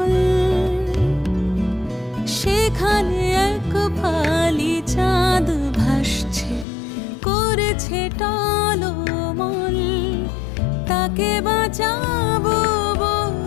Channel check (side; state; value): right; drops out; at 6.7 s